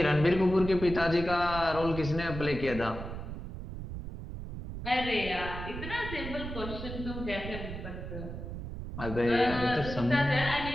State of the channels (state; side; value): noise; right; rumble, 8 dB below the sound